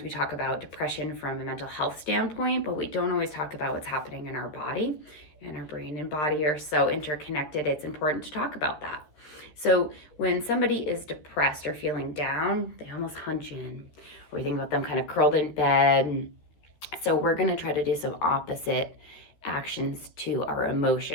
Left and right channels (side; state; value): right; late; 13 ms